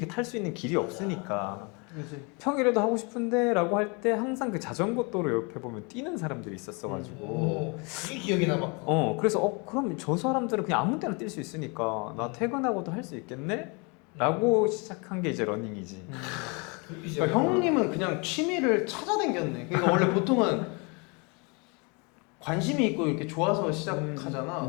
탈 수 있는 길이 없으니까 그치. 평일에도 하고 싶은데 라고 할 때 항상 그 자전거 도로 옆에 보면 뛰는 사람들이 있었어가지고 그게 기억에 남았고. 그래서 그럼 저 사람들은 그냥 아무 때나 뛸 수 있으니까 나 퇴근하고도 할 수 있겠네? 라고 시작한 게 이제 러닝이지. 그러니까 형님은 그냥 취미를 찾아댕겼네. 그러니까 원래 보통은 관심이 있고 이렇게 좋아서 시작하잖아.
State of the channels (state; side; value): quieter; right; 31.5 dB